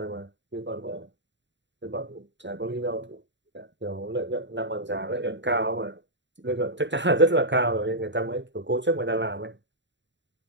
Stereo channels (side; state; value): left; late; 0.53 ms